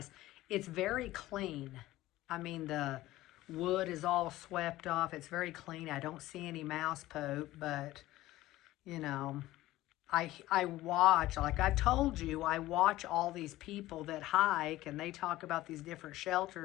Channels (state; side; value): quieter; right; 16.5 dB